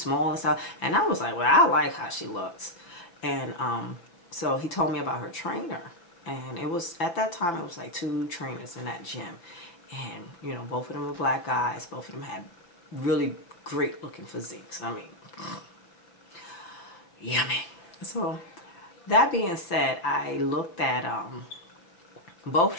and stuff. And I was like, well, I like how she looks. And so he told me about her trainer. And it was, at that time, it was like 2 trainers in that gym. And, both of them were black guys. Both of them had really great looking physiques. I mean, yummy. So that being said, I looked at both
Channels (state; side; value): late; right; 5.8 ms